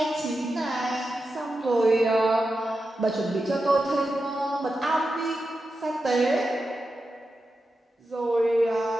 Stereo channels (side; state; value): both; normal; correlation 0.90